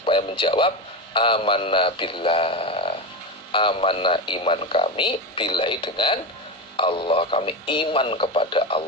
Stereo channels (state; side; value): normal; both; correlation 0.18